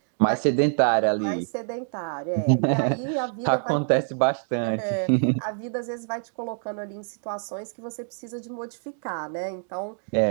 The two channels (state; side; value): silent; left; digital silence